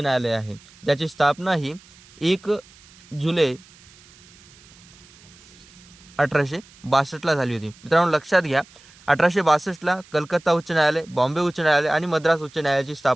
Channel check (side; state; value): right; noise; hiss, 25 dB below the sound